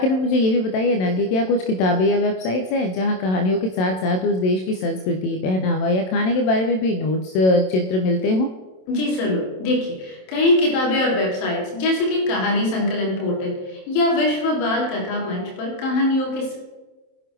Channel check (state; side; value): late; right; 27 ms